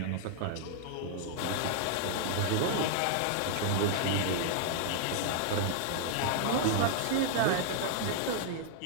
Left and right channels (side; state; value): both; different; correlation -0.01